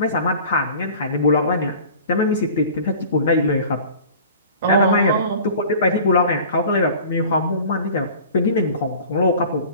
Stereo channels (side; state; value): both; inverted; correlation -0.44